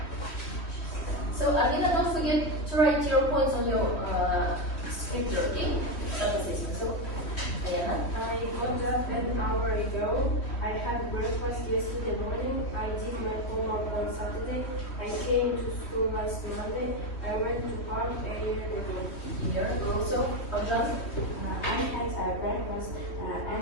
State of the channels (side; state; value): right; late; 3.1 ms